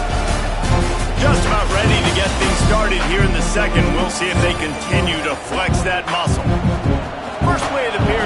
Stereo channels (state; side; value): identical; both; correlation 1.00